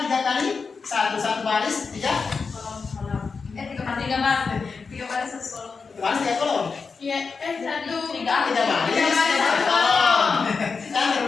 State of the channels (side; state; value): right; quieter; 5.0 dB